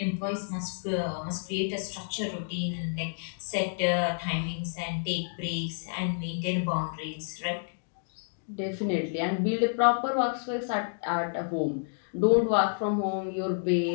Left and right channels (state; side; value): silent; right; digital silence